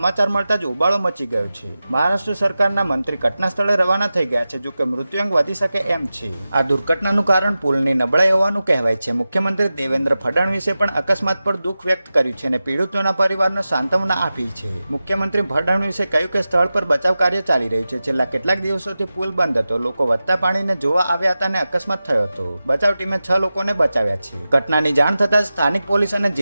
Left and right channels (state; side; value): inverted; both; correlation -0.94